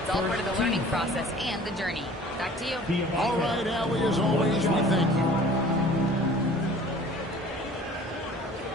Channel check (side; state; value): both; normal; correlation 0.47